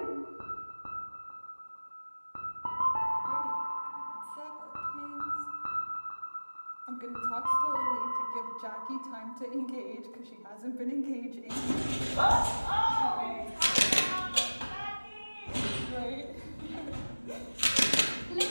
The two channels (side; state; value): both; inverted; correlation -1.00